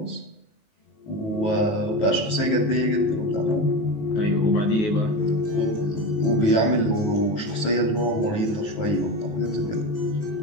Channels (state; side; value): late; right; 19 ms